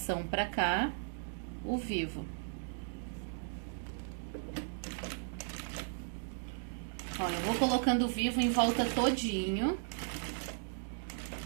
pra cá, o vivo. Ó, eu vou colocando o vivo em volta todinho.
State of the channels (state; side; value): silent; left; digital silence